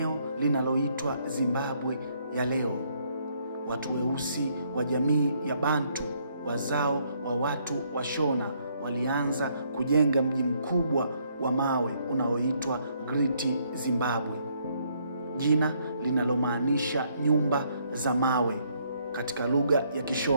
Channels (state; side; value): inverted; both; correlation -0.70